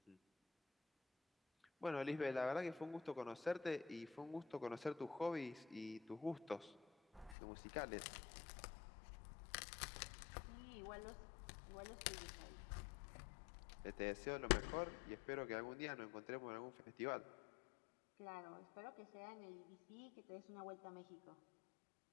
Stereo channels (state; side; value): drops out; right; at 7.4 s